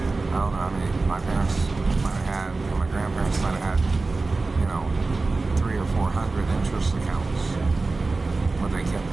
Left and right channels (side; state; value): left; quieter; 3.6 dB